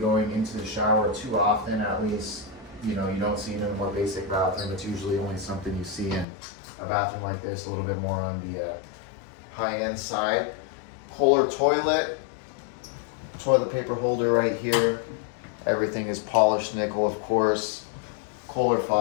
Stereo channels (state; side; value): drops out; right; at 6.2 s